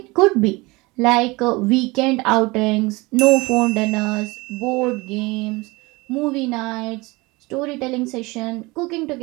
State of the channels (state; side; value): quieter; left; 23.7 dB